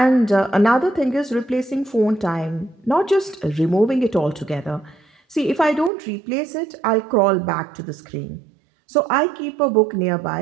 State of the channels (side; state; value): left; drops out; at 5.9 s